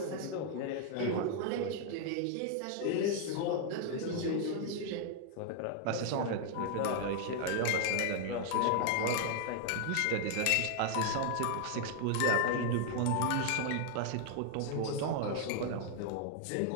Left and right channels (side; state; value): both; different; correlation 0.00